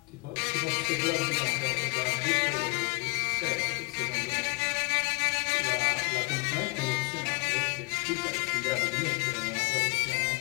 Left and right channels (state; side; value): quieter; right; 27.8 dB